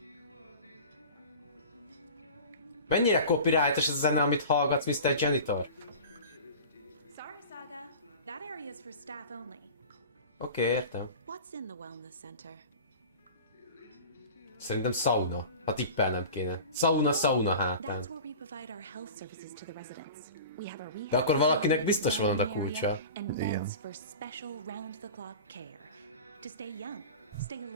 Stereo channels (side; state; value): both; inverted; correlation -0.37